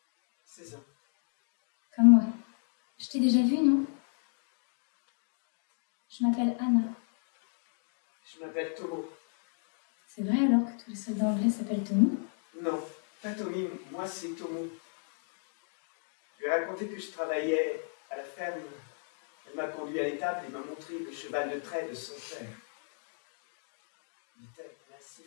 16 ans. Comme moi. Je t'ai déjà vu, non? Je m'appelle Anna. Je m'appelle Tomo. C'est vrai alors que tous les soldats anglais s'appellent Tommy? Non, pas Tommy, moi c'est Tomo. Je lui ai raconté que je travaillais à la ferme. Elle m'a conduit à l'étable et m'a montré le cheval de trait de son père. Il était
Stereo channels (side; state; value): right; silent; 55 dB below the other